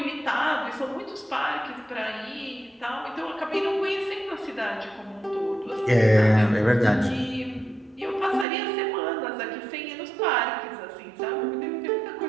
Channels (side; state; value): left; drops out; at 8.5 s